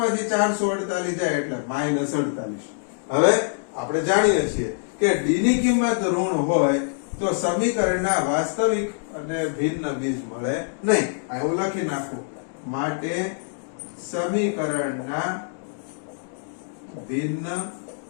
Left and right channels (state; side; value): silent; right; digital silence